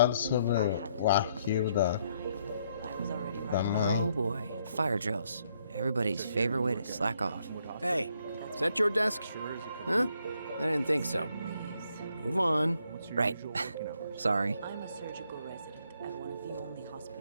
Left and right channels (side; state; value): both; inverted; correlation -0.72